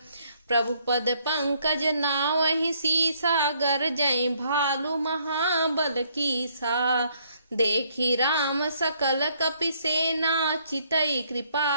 प्रभु पद पंकज नावहि सीसा, गरजई भालु महाबल कीसा। देखी राम सकल कपि सेना, चितई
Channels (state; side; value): inverted; both; correlation -0.68